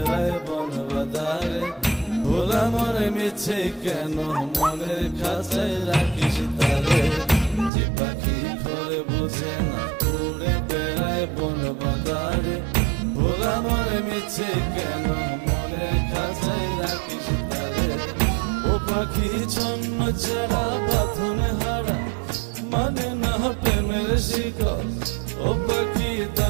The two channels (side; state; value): left; drops out; at 7.7 s